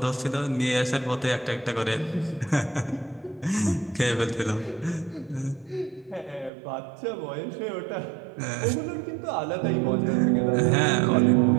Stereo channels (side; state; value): left; drops out; at 6.5 s